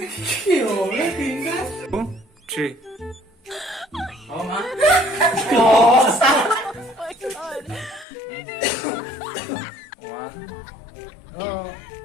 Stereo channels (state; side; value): drops out; right; at 8.1 s